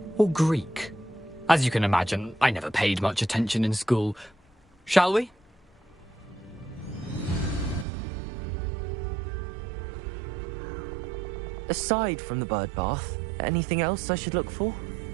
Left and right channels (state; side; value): drops out; left; at 7.9 s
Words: Or Greek. As you can imagine, I never paid much attention in school. Shall we? Aside from the bird bath, anything else I should look for?